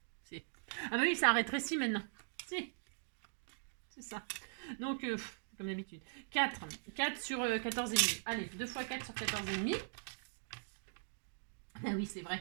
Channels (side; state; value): left; silent; digital silence